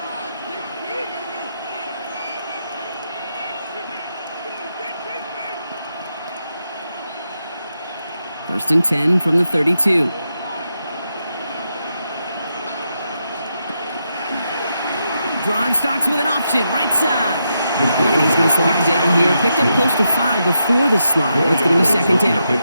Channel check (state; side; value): inverted; both; correlation -0.84